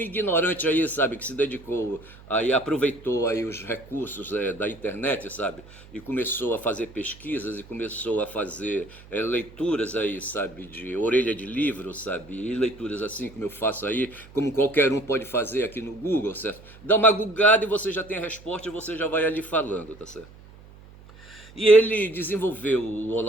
aí, sabe, que se dedicou, aí aproveitou aí os recursos da internet, sabe? E começou a fazer pesquisas e começou a fazer leituras aí, sabe, de orelha de livro, sabe? E leituras assim como eu faço aí, como qualquer um pode fazer aqui no Google, certo? Dá uma googada e você já tem a resposta e você já vai ali falando, tá certo? E ele desenvolveu o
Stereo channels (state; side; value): noise; right; hum, 21 dB below the sound